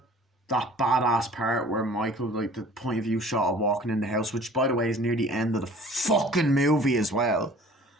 That badass part where Michael, like, the point of view shot of walking in the house, which, by the way, is near the end of the fucking movie as well.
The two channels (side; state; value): both; normal; correlation 0.48